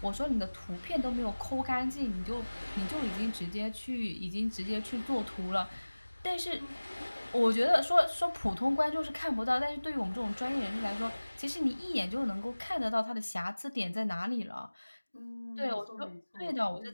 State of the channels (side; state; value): both; inverted; correlation -1.00